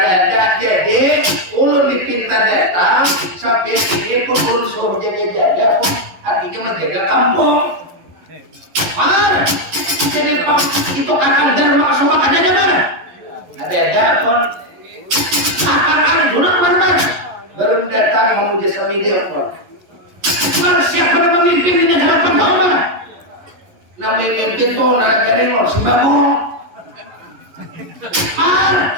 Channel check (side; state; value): left; late; 11 ms